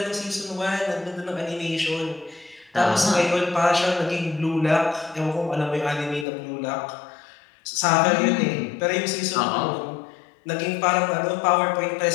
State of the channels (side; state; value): right; drops out; at 6.2 s